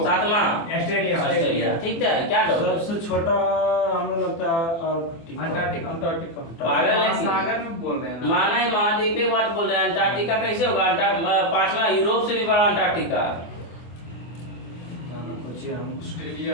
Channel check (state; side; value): late; right; 24 ms